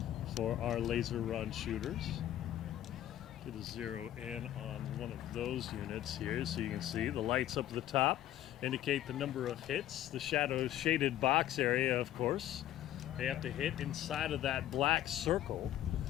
for our laser run shooters. Get a zero in on one of those units here so you can see the lights up at the top indicate the number of hits. The shadows shaded box area, of course, they have to hit inside of that black circle.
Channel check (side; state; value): right; quieter; 12.6 dB